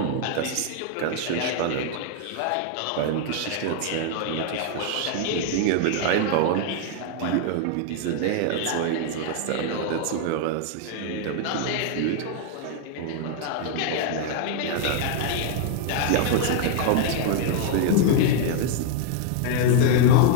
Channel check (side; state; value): both; different; correlation 0.00